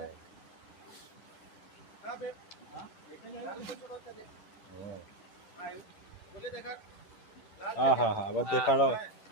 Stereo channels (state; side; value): late; right; 10 ms